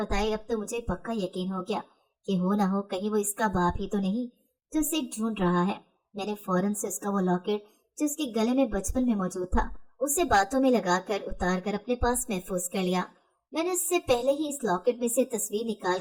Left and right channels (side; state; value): both; identical; correlation 1.00